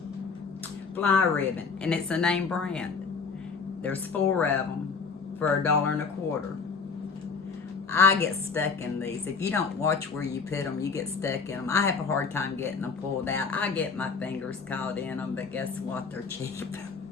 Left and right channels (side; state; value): right; quieter; 5.1 dB